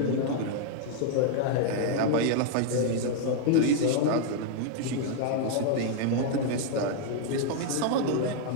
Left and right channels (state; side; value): different; both; correlation -0.01